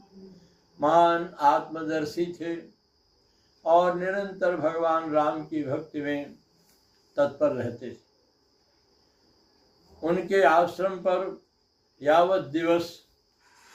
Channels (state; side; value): identical; both; correlation 1.00